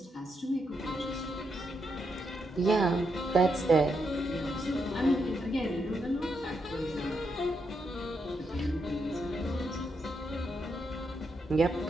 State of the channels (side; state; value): both; normal; correlation 0.81